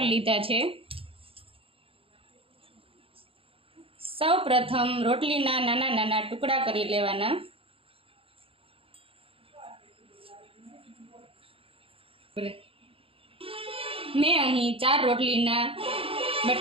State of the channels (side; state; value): left; late; 0.27 ms